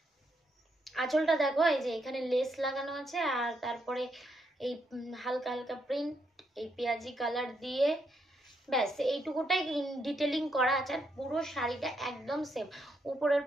আঁচলটা দেখো, এই যে এখানে লেস লাগানো আছে, আর তারপরে এই হালকা হালকা প্রিন্ট, এই পেঁয়াজি কালার দিয়ে, ব্যাস এইটুকুটাই ডিটেলিং করা আছে। আর পুরো শাড়িটা একদম সেম। উপরের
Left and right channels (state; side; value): normal; both; correlation 0.78